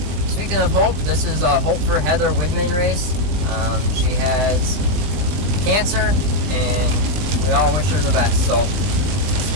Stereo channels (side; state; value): left; late; 20 ms